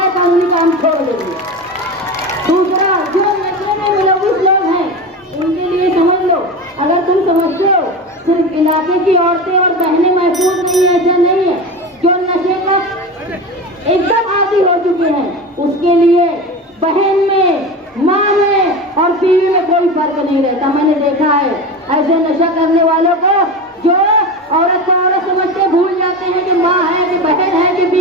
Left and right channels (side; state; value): both; normal; correlation 0.26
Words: कानूनी काम छोड़ देंगे। दूसरा, जो नशे में मुलविस लोग हैं उनके लिए समझ लो, अगर तुम समझते हो सिर्फ इलाके की औरतें और बहनें महफूज नहीं है, ऐसा नहीं है। जो नशे का एकदम आदी हो चुके हैं उसके लिए बहन में, माँ में और बीवी में कोई फर्क नहीं रहता। मैंने देखा है ऐसे नशा करने वालों को, जो औरत को औरत समझते भूल जाते हैं कि माँ है कि बहन है कि